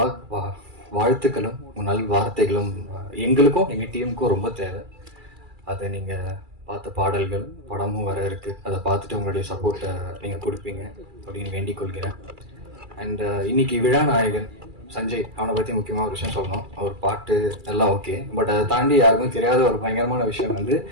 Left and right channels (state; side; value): late; left; 2.3 ms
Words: வாழ்த்துக்களும் நல் வார்த்தைகளும் எங்களுக்கும் எங்கள் டீமுக்கும் ரொம்ப தேவை. அதை நீங்கள் பார்த்த பாடல்கள், படமும் வர இருக்கு, அதை பார்த்துட்டு உங்களுடைய சப்போர்ட்டை நீங்கள் கொடுப்பீங்க அப்படின்னு வேண்டிக் கொள்கிறேன். அண்ட் இன்னைக்கு விழா நாயகன் சஞ்சய், அவனை பற்றி முக்கியமாக ஒரு விஷயம் சொல்லணும். அவர் பாட்டு எல்லாம் ஓகே, பட் அதை தாண்டி யாருக்கும் தெரியாத ஒரு பயங்கரமான விஷயம் வந்து